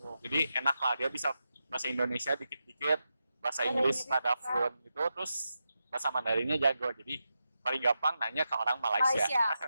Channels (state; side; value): inverted; both; correlation -0.88